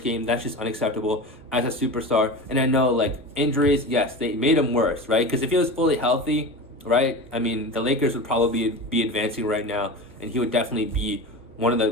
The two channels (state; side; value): normal; both; correlation 0.28